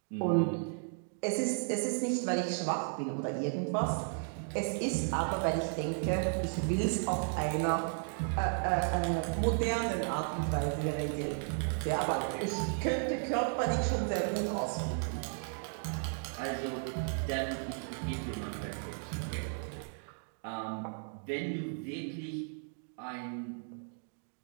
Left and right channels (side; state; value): left; silent; 55 dB below the other